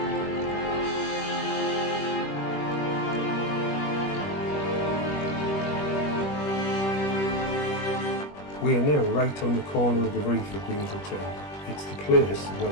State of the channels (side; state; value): right; late; 21 ms